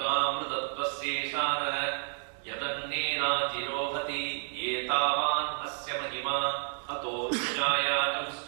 yadannena jirohati etavan asya mahima ato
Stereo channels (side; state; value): left; silent; digital silence